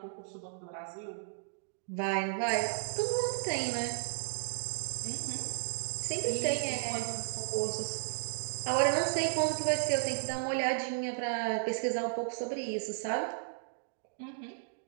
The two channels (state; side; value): silent; left; digital silence